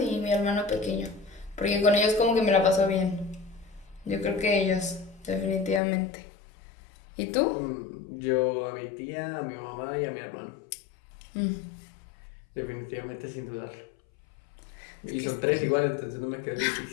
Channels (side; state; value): right; drops out; at 5.8 s